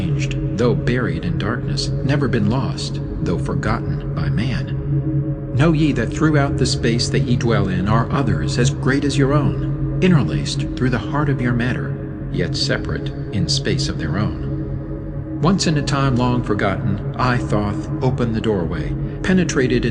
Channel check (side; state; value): both; identical; correlation 1.00